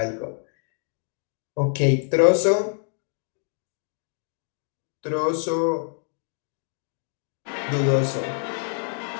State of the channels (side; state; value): right; silent; 61 dB below the other